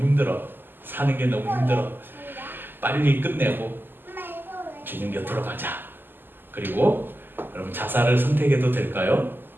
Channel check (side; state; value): left; late; 0.094 ms